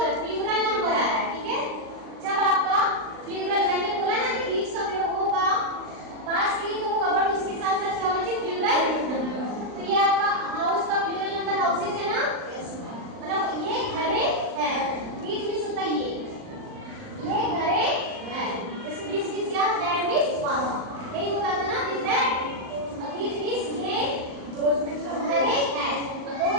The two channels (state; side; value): late; left; 39 ms